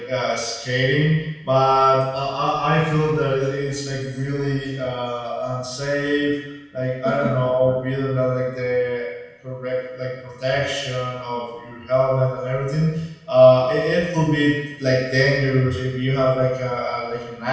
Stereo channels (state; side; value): identical; both; correlation 1.00